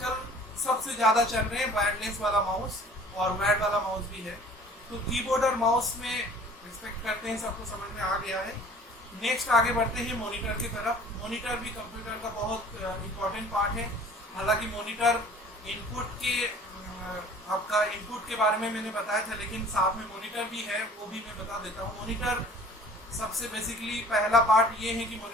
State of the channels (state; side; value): normal; both; correlation 0.49